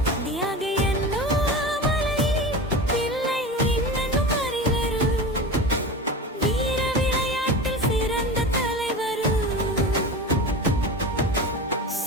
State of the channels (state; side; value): normal; both; correlation 0.29